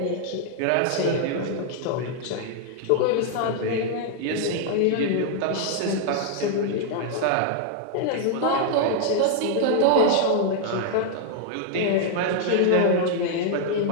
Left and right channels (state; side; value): different; both; correlation 0.00